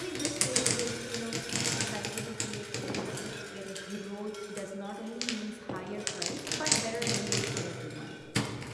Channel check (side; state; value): both; identical; correlation 1.00